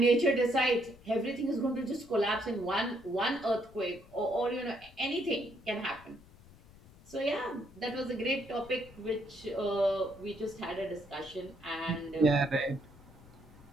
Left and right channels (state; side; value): noise; left; rumble, 23 dB below the sound